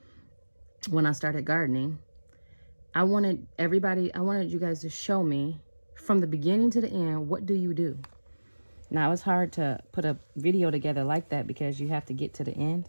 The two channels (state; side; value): inverted; both; correlation -1.00